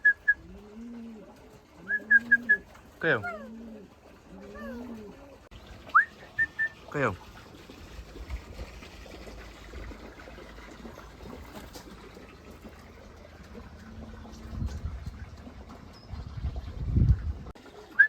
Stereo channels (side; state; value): both; identical; correlation 1.00